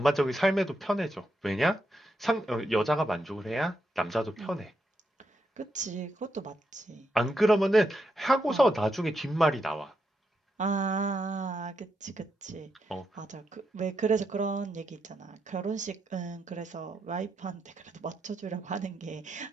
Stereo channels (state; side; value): normal; both; correlation 0.83